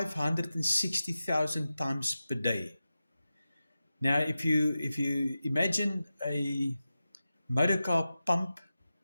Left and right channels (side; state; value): both; inverted; correlation -0.93